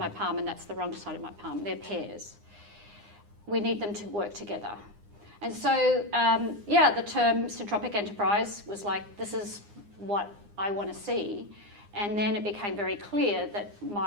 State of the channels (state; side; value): late; left; 9.8 ms